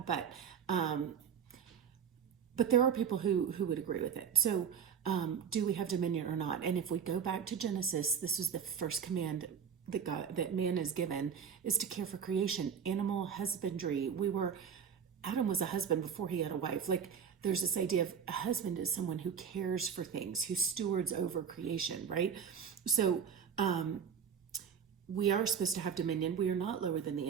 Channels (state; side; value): quieter; left; 7.3 dB